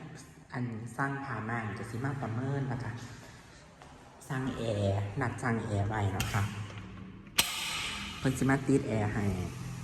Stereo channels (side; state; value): both; identical; correlation 1.00